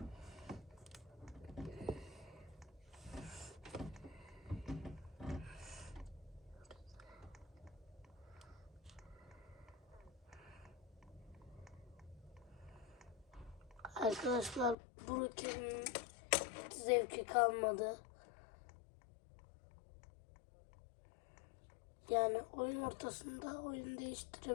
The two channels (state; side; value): drops out; right; at 14.8 s